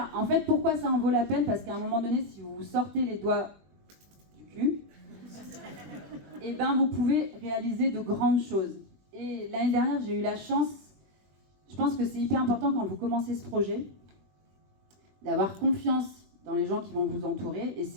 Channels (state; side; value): late; left; 21 ms